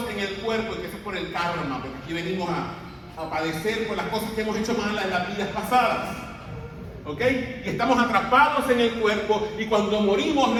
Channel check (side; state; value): both; identical; correlation 1.00